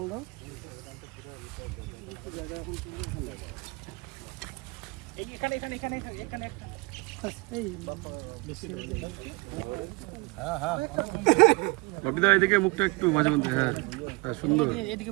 দাও কপি দাও, এদিকে মুখটা একটু মাঝে মধ্যে, হ্যাঁ হ্যাঁ, সুন্দর।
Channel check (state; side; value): quieter; left; 26.3 dB